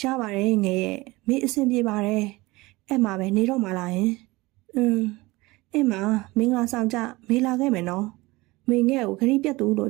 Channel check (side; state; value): left; quieter; 21.4 dB